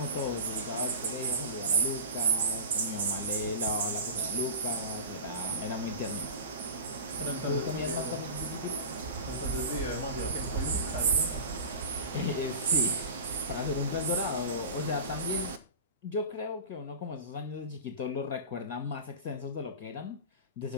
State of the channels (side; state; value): both; inverted; correlation -0.33